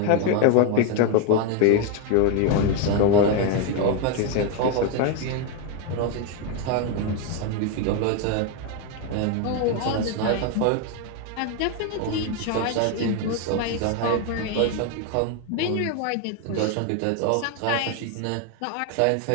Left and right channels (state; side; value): different; both; correlation 0.02